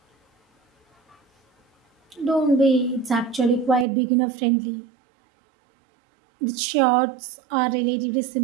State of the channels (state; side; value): drops out; left; at 3.9 s